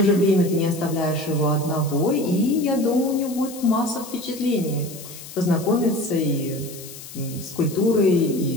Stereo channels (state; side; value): noise; left; hiss, 15 dB below the sound